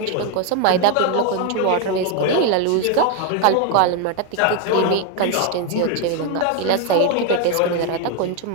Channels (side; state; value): both; different; correlation 0.01